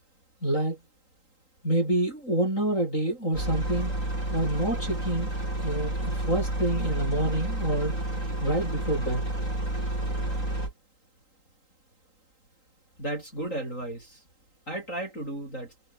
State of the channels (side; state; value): right; late; 3.8 ms